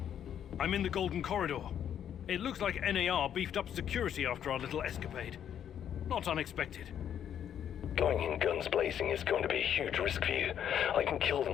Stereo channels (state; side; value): quieter; right; 9.4 dB